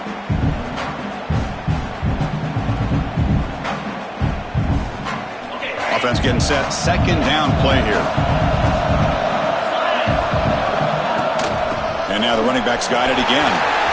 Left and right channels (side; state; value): both; identical; correlation 1.00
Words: Offense getting set. Second down play here. And now the running back's got it again.